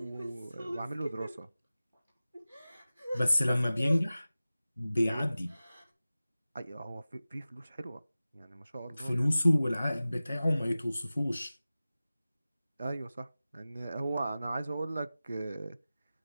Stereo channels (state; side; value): inverted; both; correlation -0.96